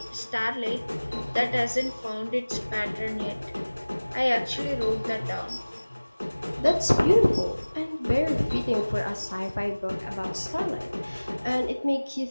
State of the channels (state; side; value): inverted; both; correlation -1.00